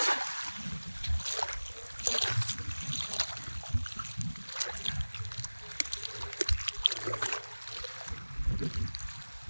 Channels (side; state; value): both; inverted; correlation -1.00